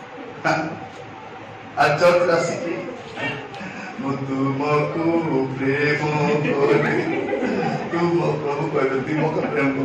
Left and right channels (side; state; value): both; identical; correlation 1.00